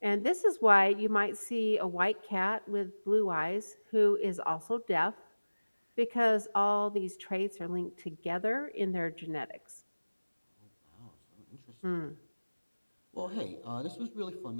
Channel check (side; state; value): both; inverted; correlation -1.00